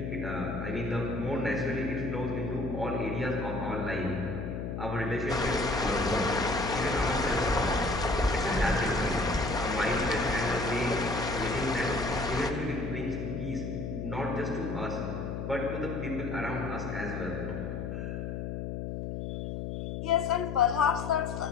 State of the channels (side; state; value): left; noise; hum, 4 dB below the sound